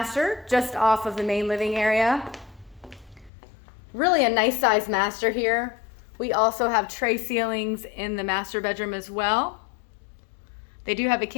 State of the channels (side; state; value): right; drops out; at 3.3 s